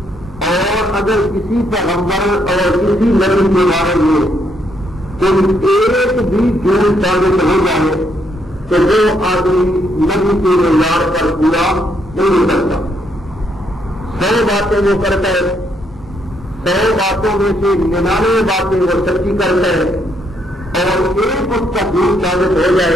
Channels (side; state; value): both; normal; correlation 0.74